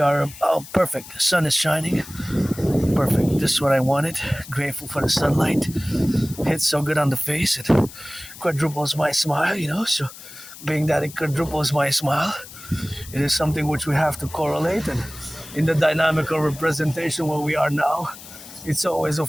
are perfect. The sun is shining. Perfect. This is what I wanted. Grateful for the sunlight. Hits so good on the face. It quadruples my smile, So being that it quadruples my smile, it is something which we have to correlate. And in the dynamical representation where we are now, it's always,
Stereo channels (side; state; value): left; noise; hiss, 16 dB below the sound